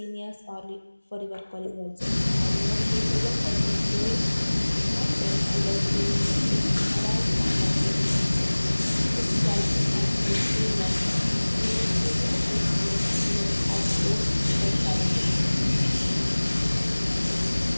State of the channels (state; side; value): inverted; both; correlation -1.00